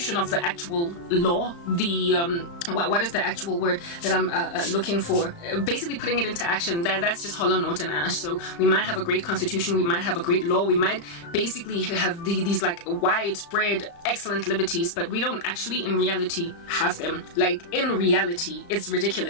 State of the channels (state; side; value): late; right; 35 ms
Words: of the actual law, the what is the actual word that I'm looking for? Basically putting it into action. That's just hollow note and ash. So we might have a great constitution, we might have a great law, we might basically have these like widespread excellent liberties, but we don't actually in reality have them. Like, in reality, it's